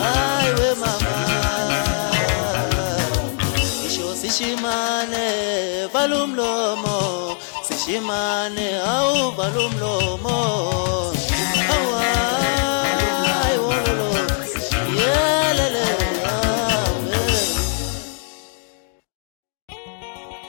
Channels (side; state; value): right; silent; 63 dB below the other